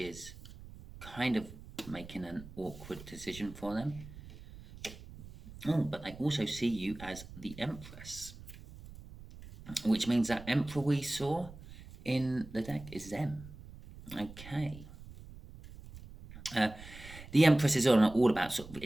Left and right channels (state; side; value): noise; right; rumble, 16 dB below the sound